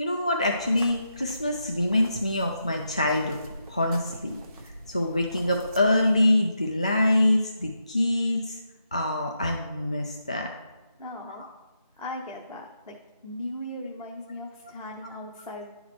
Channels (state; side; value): inverted; both; correlation -0.83